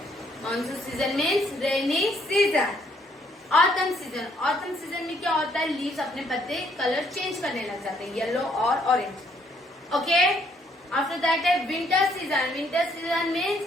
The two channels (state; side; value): normal; both; correlation 0.68